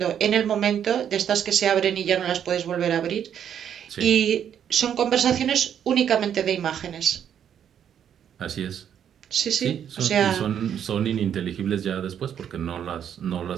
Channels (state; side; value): quieter; left; 9.0 dB